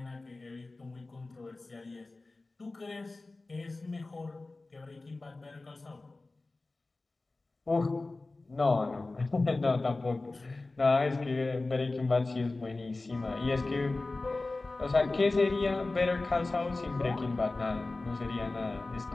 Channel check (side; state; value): right; quieter; 3.3 dB